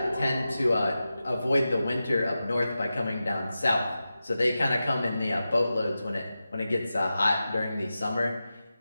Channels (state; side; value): inverted; both; correlation -0.93